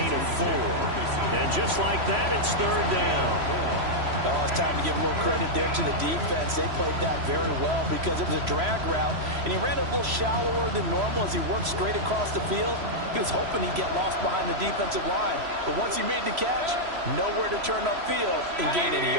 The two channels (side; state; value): left; late; 3.0 ms